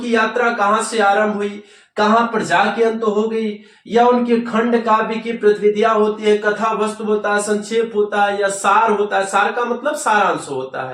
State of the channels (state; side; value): identical; both; correlation 1.00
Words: यात्रा कहां से आरंभ हुई, कहां पर जाके अंत हो गई, या उनके खंड काव्य की प्रतिविधियां होती है, कथा वस्तु होता है, संक्षेप होता है, या सार होता है। सार का मतलब सारांश होता